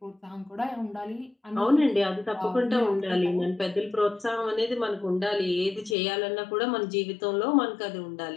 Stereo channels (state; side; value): drops out; right; at 6.0 s